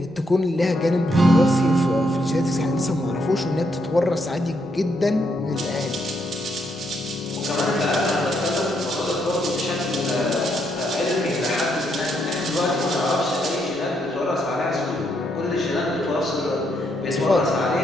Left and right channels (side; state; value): right; noise; rumble, 28 dB below the sound